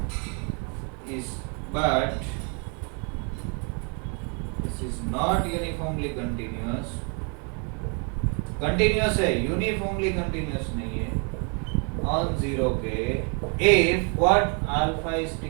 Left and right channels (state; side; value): quieter; left; 35.9 dB